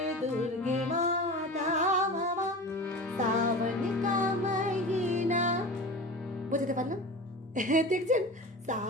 দুর্গে মাতা মামা সাवन का महीना, বুঝতে পারলাম? দেখছেন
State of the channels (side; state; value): both; normal; correlation 0.32